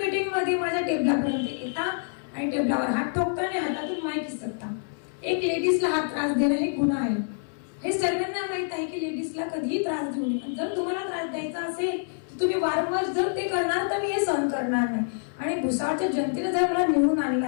मीटिंग मध्ये माझ्या टेबलापर्यंत येतात आणि टेबलावर हात ठोकतात आणि हातातून माईक हिसकतात. एक लेडीजला हात त्रास देणं हे गुन्हा आहे. हे सर्वांना माहित आहे की लेडीजला कधीही त्रास देऊ नये. जर तुम्हाला त्रास द्यायचा असेल तर तुम्ही वारंवार जर ते करणार तर मी हे सहन करणार नाही. आणि भुसावळच्या जनतेने जर मला निवडून आणलं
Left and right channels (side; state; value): right; silent; digital silence